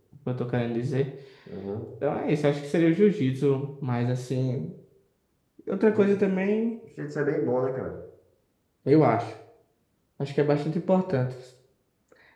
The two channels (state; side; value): identical; both; correlation 1.00